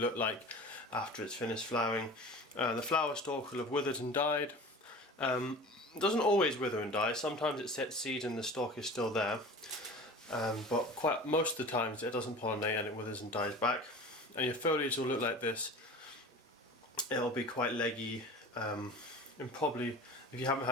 like after it's finished flowering. The flower stalk will have withered and died. It doesn't always wither and die, sometimes it sets seed and the stalk is still there. But most of the times it doesn't pollinate and it withers and dies back. And your foliage will look like this. It'll be quite leggy. And probably, if you haven't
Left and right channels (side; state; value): both; normal; correlation 0.38